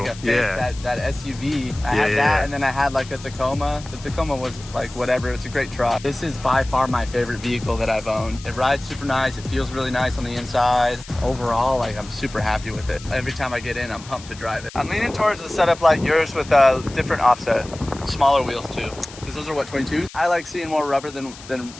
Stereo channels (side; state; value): left; noise; hiss, 17 dB below the sound